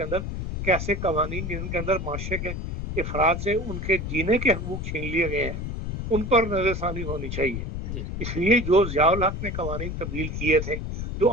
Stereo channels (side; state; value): left; noise; rumble, 5 dB below the sound